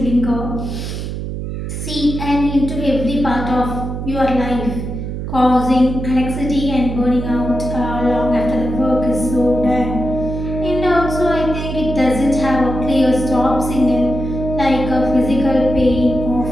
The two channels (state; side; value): noise; right; hum, 5 dB below the sound